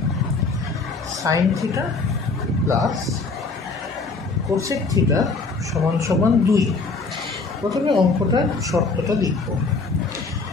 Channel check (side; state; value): right; quieter; 4.0 dB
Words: sign theta plus cosec theta সমান সমান 2। প্রথমে অঙ্কটার শর্তটা লিখব,